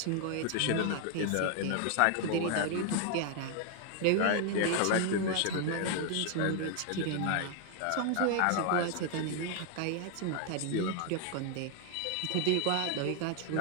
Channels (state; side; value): different; both; correlation 0.00